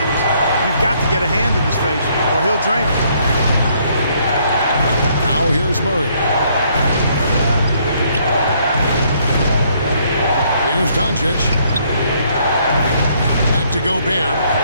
you've got to get a hand in his face or he'll drain it. Now here's Murray. Here's Doncic. Back to Gobert.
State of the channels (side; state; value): both; inverted; correlation -0.68